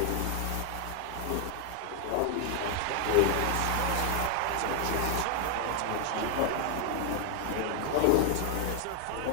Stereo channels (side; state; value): both; different; correlation 0.01